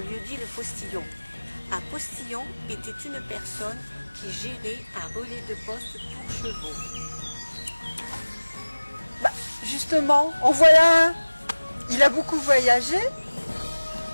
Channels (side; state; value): both; inverted; correlation -1.00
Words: le postillon. Un postillon était une personne qui gérait un relais de poste pour chevaux. Justement, en voilà un. Il a beaucoup voyagé.